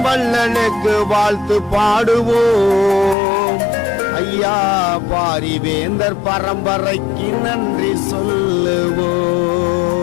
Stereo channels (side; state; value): right; drops out; at 3.2 s